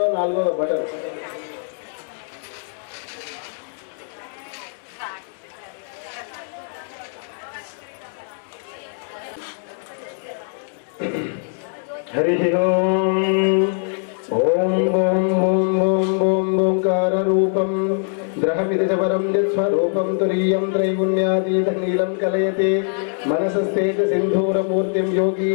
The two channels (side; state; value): right; silent; 63 dB below the other